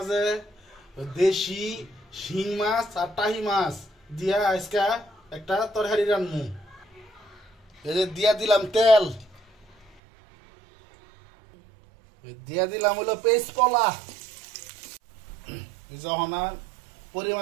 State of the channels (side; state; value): left; drops out; at 10.0 s